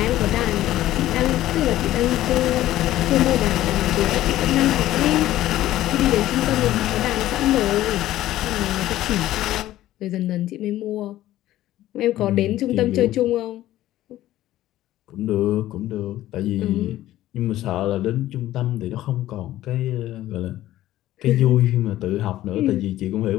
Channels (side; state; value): right; quieter; 14.4 dB